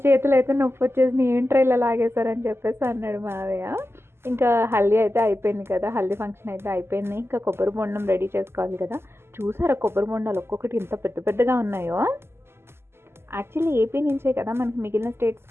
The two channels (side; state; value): left; late; 0.12 ms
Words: చేతులు అయితే నొప్పి వచ్చేసి ఏంట్రా ఇలా లాగేశారని చెప్పేసి అన్నాడు మావయ్య. ఇంకా హల్దీ అయితే అయిపోయింది కదా, హల్దీ ఫంక్షన్ అయితే అయిపోయింది. ఇంకా కొబ్బరి బొండం రెడీ చేసుకోవాలి కదా. చూసారా కొబ్బరి బొండాలు ఒక్కొక్కటి ఇంత పెద్దగా ఉన్నాయో. యాక్చువల్లీ ఏపీ నుంచే కదా మనకి మిగిలిన